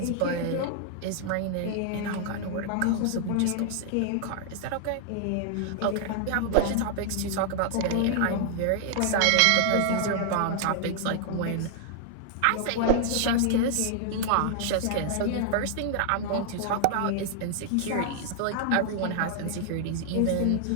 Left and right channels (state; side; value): different; both; correlation -0.01